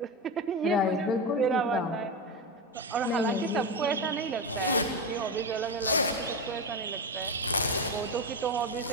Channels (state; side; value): normal; both; correlation 0.15